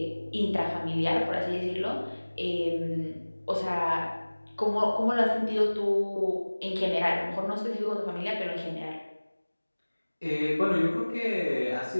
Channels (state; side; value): inverted; both; correlation -1.00